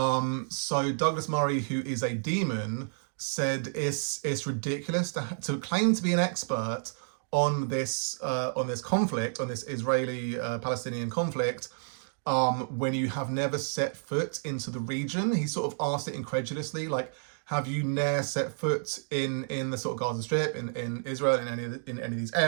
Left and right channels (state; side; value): silent; left; digital silence